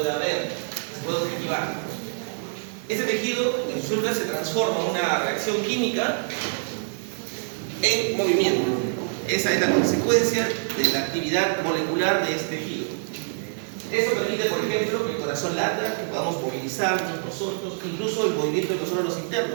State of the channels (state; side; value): silent; left; 61 dB below the other